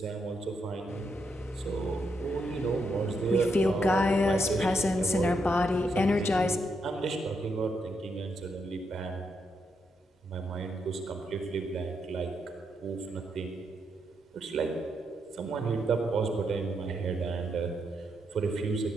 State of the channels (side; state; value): both; normal; correlation 0.80